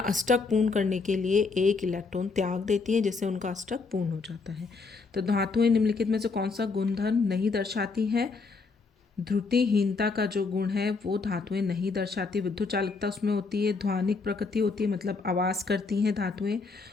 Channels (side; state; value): right; quieter; 4.3 dB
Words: पूर्ण करने के लिए एक इलेक्ट्रॉन त्याग देती हैं जिससे उनका अष्टक पूर्ण हो जाता है। तो धातुएं निम्नलिखित में से कौन सा गुणधर्म नहीं दर्शाती हैं? ध्रुतिहीनता का जो गुण है वो धातुएं नहीं दर्शाती। विद्युत चालकता उसमें होती है, ध्वनिक प्रकृति होती है मतलब आवाज़ करती हैं धातुएं,